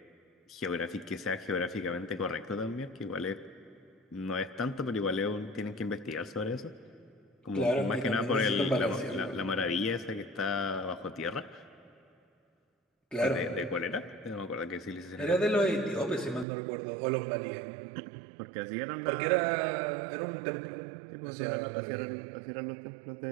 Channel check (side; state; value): left; drops out; at 16.4 s